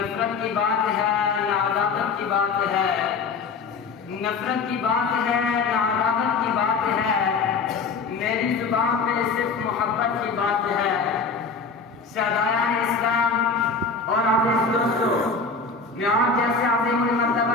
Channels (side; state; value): right; quieter; 4.7 dB